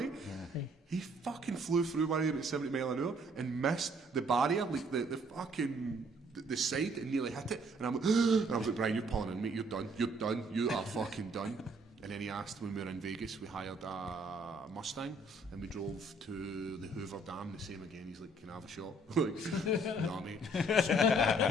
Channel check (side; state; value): both; normal; correlation 0.63